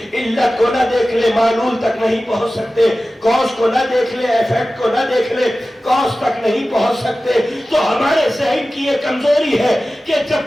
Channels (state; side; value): normal; both; correlation 0.95